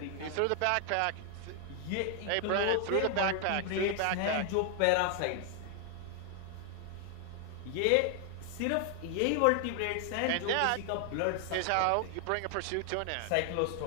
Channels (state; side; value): different; both; correlation 0.00